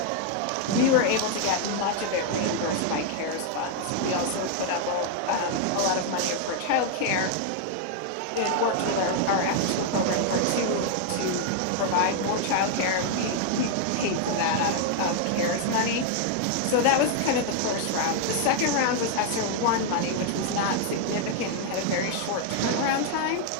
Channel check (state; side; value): different; both; correlation 0.00